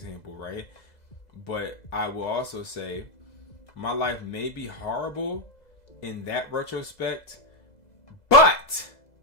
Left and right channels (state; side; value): late; right; 2.0 ms